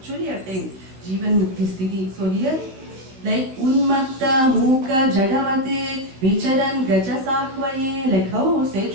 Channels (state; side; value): late; left; 15 ms